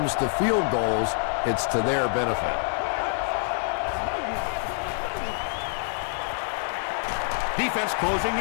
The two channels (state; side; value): silent; right; digital silence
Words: to field goals, it's to their benefit. Defense closing